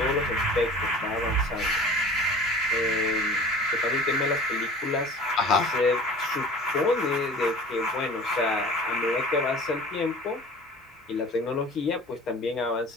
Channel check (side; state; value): both; normal; correlation 0.42